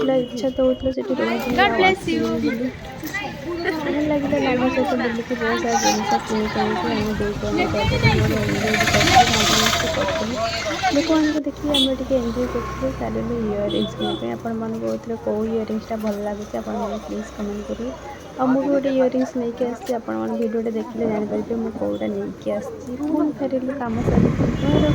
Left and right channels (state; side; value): identical; both; correlation 1.00